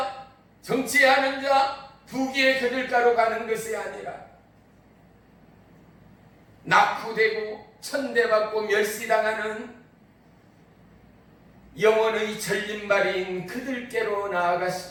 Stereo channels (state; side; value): identical; both; correlation 1.00